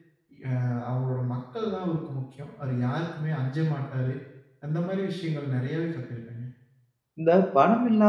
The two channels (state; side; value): identical; both; correlation 1.00